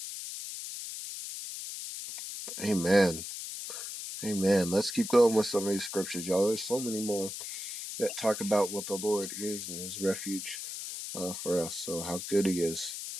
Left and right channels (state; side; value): noise; left; hiss, 7 dB below the sound